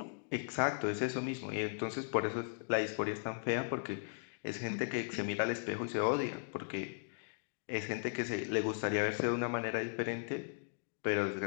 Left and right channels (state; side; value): silent; right; digital silence